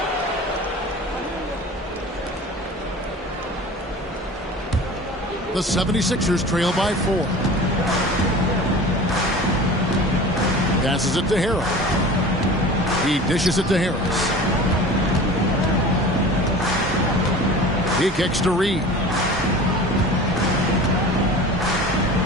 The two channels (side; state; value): both; normal; correlation 0.38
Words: The 76ers trail by 4. Passes it to Harrell. He dishes it to Harris. He kicks to Reed.